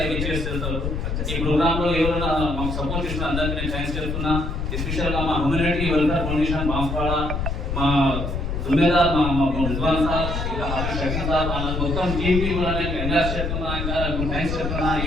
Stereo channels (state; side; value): noise; left; rumble, 3 dB below the sound